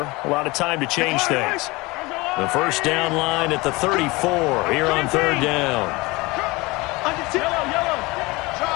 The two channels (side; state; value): right; quieter; 23.2 dB